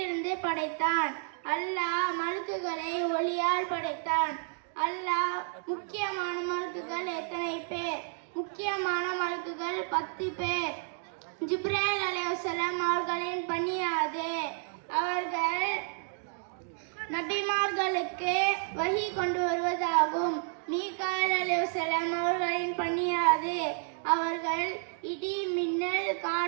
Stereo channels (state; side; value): silent; left; 57 dB below the other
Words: படைத்தான்? அல்லாஹ் மலக்குகளை ஒளியால் படைத்தான். அல்லாஹ் முக்கியமான மலக்குகள் எத்தனை பேர்? முக்கியமான மலக்குகள் 10 பேர். ஜிப்ராயில் அலைஹிஸ்ஸலாம் அவர்களின் பணி அது. அவர்கள் நபிமார்களுக்கு வஹி கொண்டு வருவதாகும். மீகாயில் அலைஹிஸ்ஸலாம் அவர்களின் பணி அது. அவர்கள் இடி, மின்னல்,